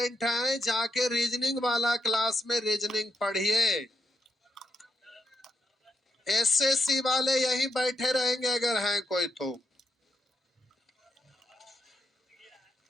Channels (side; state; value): both; normal; correlation 0.81